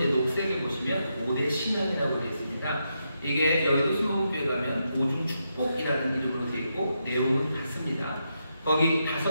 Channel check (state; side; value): inverted; both; correlation -0.83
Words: 녹색에 보시면 5대 신앙이라고 되어 있습니다. 이게 여의도 순복음교회 가면 5중 축복이라는 이름으로 되어 있고 내용은 같습니다. 거기